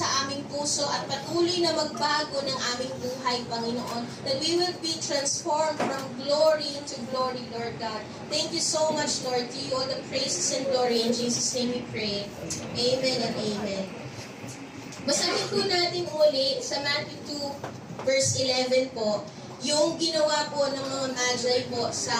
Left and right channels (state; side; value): identical; both; correlation 1.00